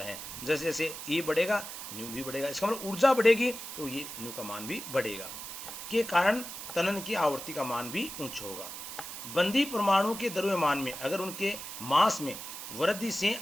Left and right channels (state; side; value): noise; right; hiss, 9 dB below the sound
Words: हैं। जैसे जैसे E बढ़ेगा न्यू भी बढ़ेगा, इसका मतलब ऊर्जा बढ़ेगी तो ये न्यू का मान भी बढ़ेगा, के कारण तनन की आवृत्ति का मान भी उच्च होगा। बंदी परमाणु के द्रव्यमान में अगर उनके मास में वृद्धि से